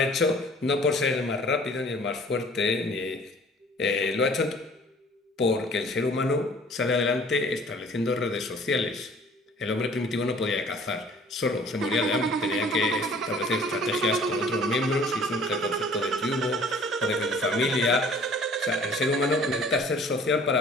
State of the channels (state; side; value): normal; both; correlation 0.52